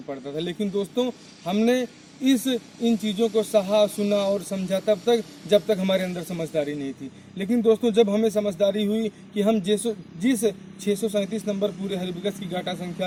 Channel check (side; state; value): both; identical; correlation 1.00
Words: पड़ता था। लेकिन दोस्तों हमने इन चीज़ों को सहा, सुना और समझा तब तक जब तक हमारे अंदर समझदारी नहीं थी। लेकिन दोस्तों जब हमें समझदारी हुई कि हम जिस 637 नंबर पूरे हरिबकस की गाटा